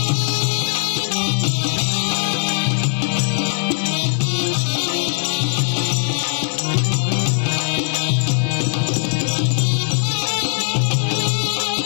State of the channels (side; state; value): right; silent; 65 dB below the other